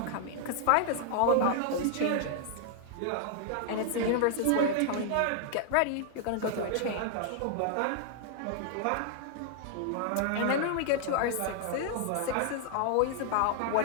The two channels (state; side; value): different; both; correlation -0.01